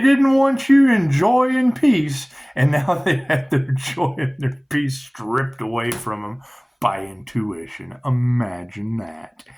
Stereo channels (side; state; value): both; identical; correlation 1.00